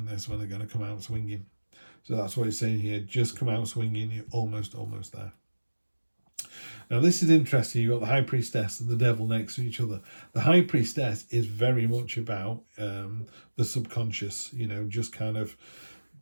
That's when they're going to come out swinging. So that's what it's saying here. Just come out swinging. You're almost there. Now this is interesting. You've got the High Priestess and the Devil next to each other. The High Priestess is very much about the subconscious, you know, just kind of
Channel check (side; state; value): both; inverted; correlation -1.00